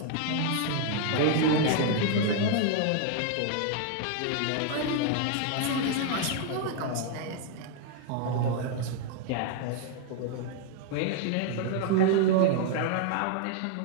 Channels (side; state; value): both; different; correlation 0.00